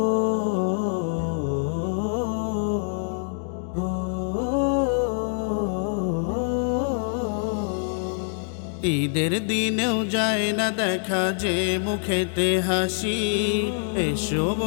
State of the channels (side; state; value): right; silent; digital silence